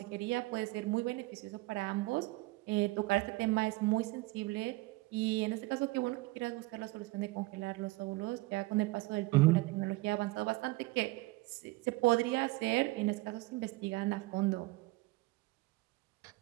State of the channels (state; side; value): quieter; left; 22.0 dB